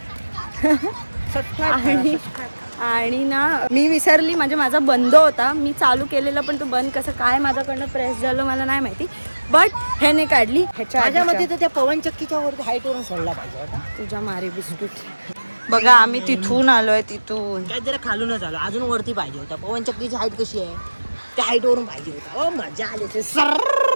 आणि ना मी विसरली, म्हणजे माझा बंद होता, मी चालू केलेला पण तो बंद कसं काय माझ्याकडनं प्रेस झालं मला नाही माहिती. बट ह्याने काढली. माझ्या मध्ये तर त्या पवन चक्कीच्या वरती हाईट वरून सोडला पाहिजे होता. तुझ्या मारी बिस्कुट. बघा आम्ही तिथून आलोय, तिथून काय जरा खालूनच आलो, अजून वरती पाहिजे होता. पवन चक्कीची हाईट कशी आहे त्या हाईट वरून पाहिजे होता. ओ मजा आली.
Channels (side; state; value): both; inverted; correlation -1.00